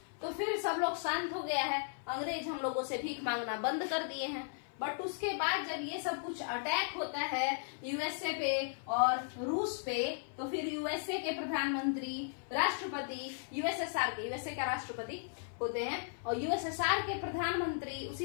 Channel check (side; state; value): right; silent; 54 dB below the other